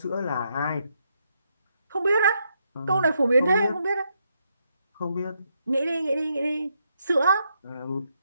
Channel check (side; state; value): both; inverted; correlation -0.79